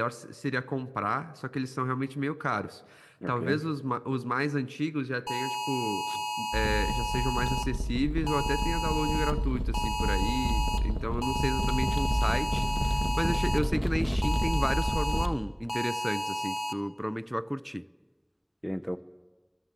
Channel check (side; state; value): both; identical; correlation 1.00